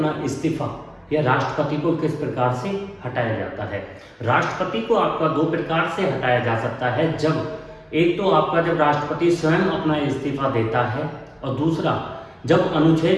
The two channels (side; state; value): both; identical; correlation 1.00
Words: इस्तीफा या राष्ट्रपति को किस प्रकार से हटाया जाता है। राष्ट्रपति को आपका दो प्रकार से हटाया जा सकता है। जब एक तो आपका जब राष्ट्रपति स्वयं अपना इस्तीफा देता है, और दूसरा जब